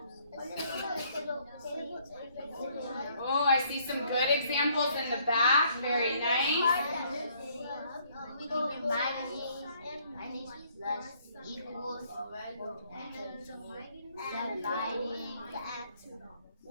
Oh, I see some good examples in the back. Very nice. Plus equals dividing.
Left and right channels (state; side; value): inverted; both; correlation -0.65